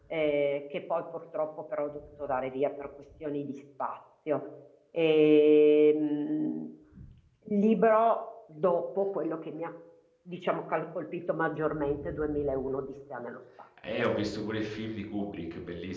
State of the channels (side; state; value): both; identical; correlation 1.00